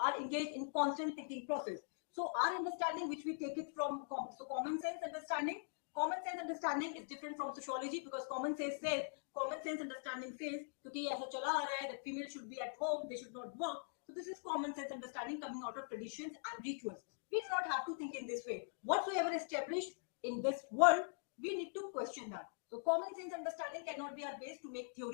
engaged in constant thinking process. So our understanding, which we take it from, so common sense understanding. Common sense understanding is different from sociology, because common sense understanding says कि ऐसा चला आ रहा है, that female should be at home, they should not work. So this is common sense understanding coming out of traditions and rituals. We do not have to think in this way. Whatsoever established in this world, we need to question that. So common sense understanding cannot be our base to make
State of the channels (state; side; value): silent; right; digital silence